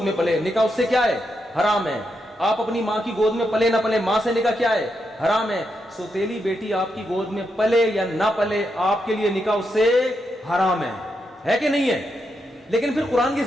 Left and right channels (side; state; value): both; normal; correlation 0.83